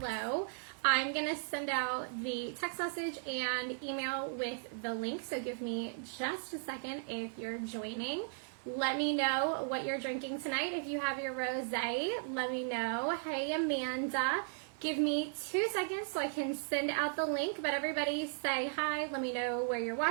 I'm going to send out the text message and email with the link, so give me just a second if you're joining. Let me know what you're drinking tonight. If you have your rosé, let me know. Hey, Amanda. Give me 2 seconds so I can send out the link, but everybody say hi. Let me know where you're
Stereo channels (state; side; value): silent; left; 54 dB below the other